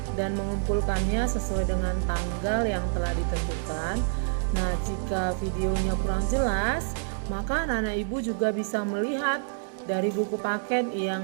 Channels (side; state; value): left; silent; digital silence